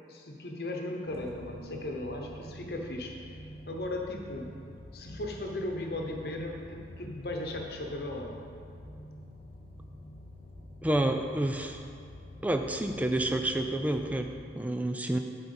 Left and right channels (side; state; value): both; normal; correlation 0.71